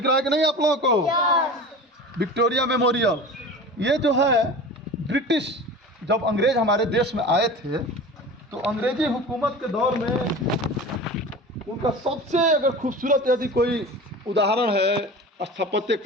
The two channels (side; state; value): both; normal; correlation 0.35